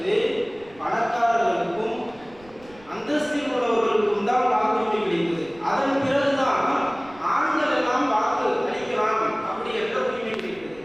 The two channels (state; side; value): noise; right; rumble, 25 dB below the sound